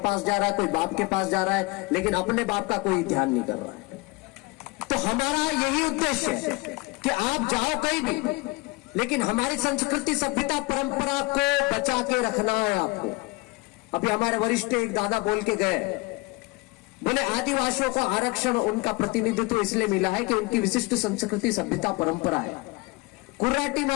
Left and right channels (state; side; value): quieter; right; 24.4 dB